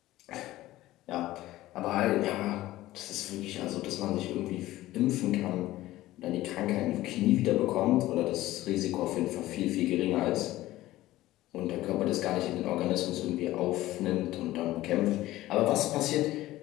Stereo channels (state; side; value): quieter; right; 16.2 dB